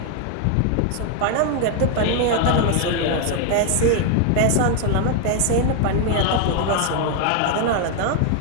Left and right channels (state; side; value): different; both; correlation 0.00